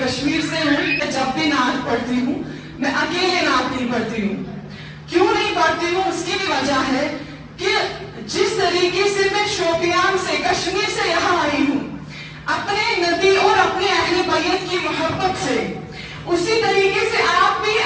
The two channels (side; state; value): both; identical; correlation 1.00